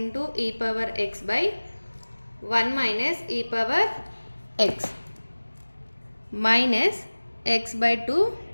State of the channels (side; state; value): both; inverted; correlation -1.00